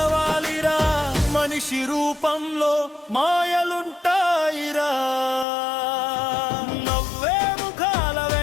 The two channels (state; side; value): drops out; right; at 5.5 s